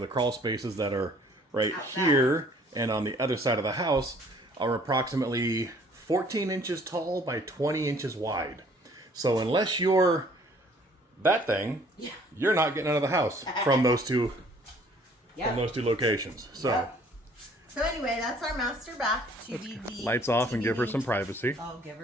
crawl spaces that are right here and on the other side of the house are approximately 14 inches tall by 20 inches wide. So unless you're that thing, you're not getting out of the house from those two locations. So. Yep. So anyway, that's our master bath. Lights off and give her some privacy. Oh, give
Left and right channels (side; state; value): both; normal; correlation 0.57